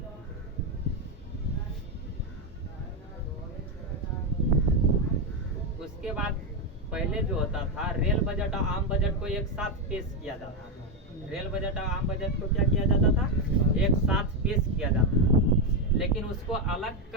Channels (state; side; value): normal; both; correlation 0.06